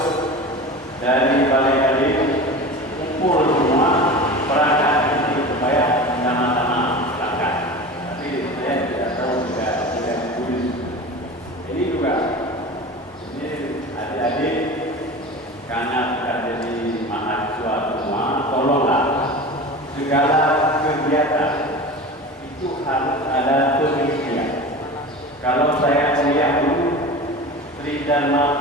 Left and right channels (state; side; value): normal; both; correlation 0.33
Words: dari Balai Kali, kumpul semua perangkat ini supaya sama-sama berangkat. Tapi saya tidak tahu tidak tulis. Ini juga, ini adik-adik karena sudah jadi mahasiswa semua, tolonglah segala kegiatan itu harus ada penelitian. Kalau saya kuliah dulu, Sri Dharma